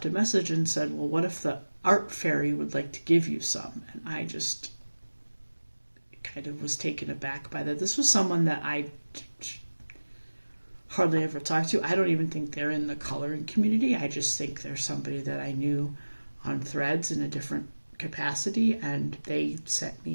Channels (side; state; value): both; inverted; correlation -1.00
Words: a message and said, well, what if the art fairy would like to give you some? And I just kind of was taken aback by that. This was someone that I hardly ever talked to. I don't even think they're in the coloring community. I just think they're somebody that I knew on Threads in a different capacity, and they sent